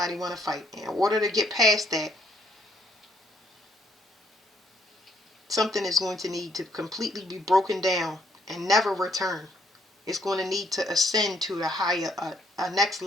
want to fight. In order to get past that, something is going to need to completely be broken down and never return. It's going to need to ascend to a next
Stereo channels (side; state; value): both; normal; correlation 0.69